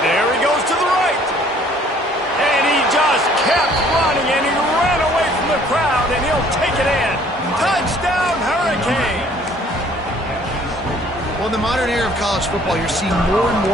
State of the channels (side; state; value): both; normal; correlation 0.57